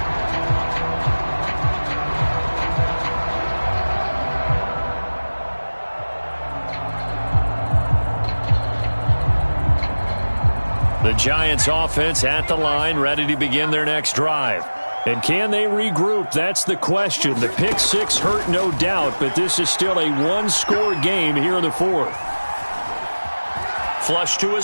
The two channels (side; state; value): both; inverted; correlation -1.00